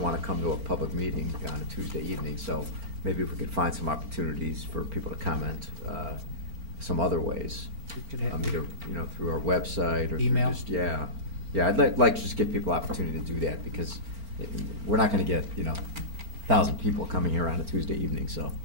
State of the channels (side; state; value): left; late; 4.4 ms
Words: want to come to a public meeting on a Tuesday evening, so maybe if we could find some opportunities for people to comment some other ways. We could have Either, through our website or email. through just, yeah. Yeah, I'd like to just give people opportunity to do that, because we're not going to get, 1,000 people coming here on a Tuesday evening, so.